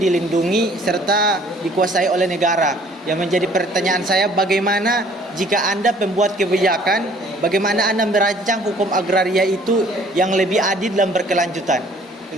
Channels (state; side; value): normal; both; correlation 0.56